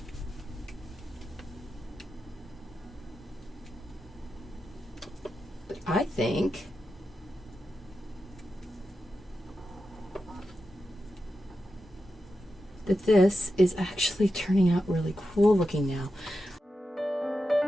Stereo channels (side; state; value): both; normal; correlation 0.90